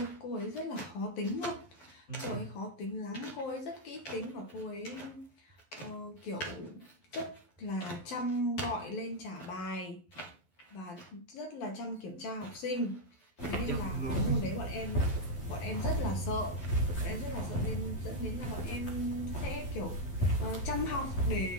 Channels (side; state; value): right; late; 11 ms